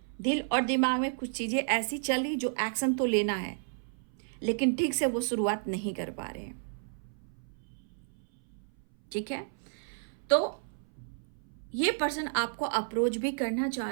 दिल और दिमाग में कुछ चीज़ें ऐसी चल रही जो एक्शन तो लेना है, लेकिन ठीक से वो शुरुआत नहीं कर पा रहे हैं, ठीक है। तो ये पर्सन आपको अप्रोच भी करना चाह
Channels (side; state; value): left; silent; 57 dB below the other